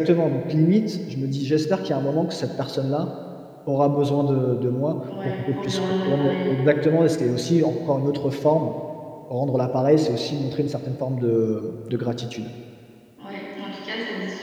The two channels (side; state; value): both; identical; correlation 1.00